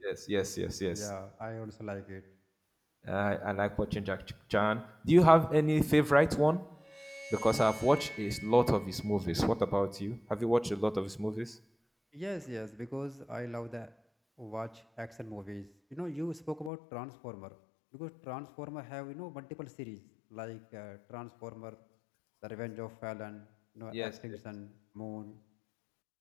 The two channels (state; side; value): drops out; right; at 16.7 s